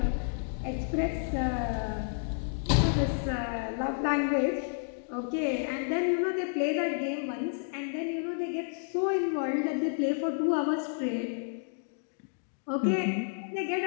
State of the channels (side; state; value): right; silent; digital silence